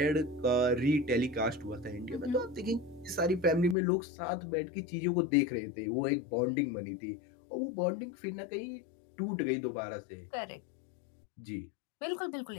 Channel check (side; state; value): right; drops out; at 3.8 s